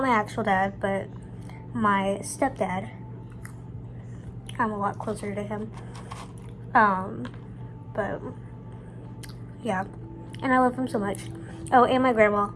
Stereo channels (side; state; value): both; identical; correlation 1.00